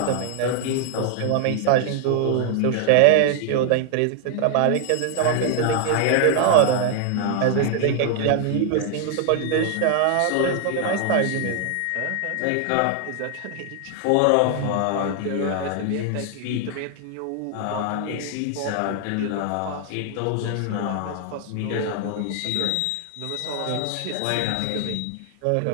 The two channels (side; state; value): both; different; correlation 0.00